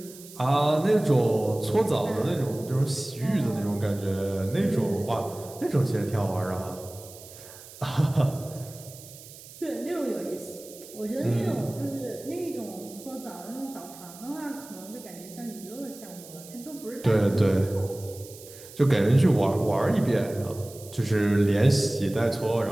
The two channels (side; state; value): right; noise; hiss, 18 dB below the sound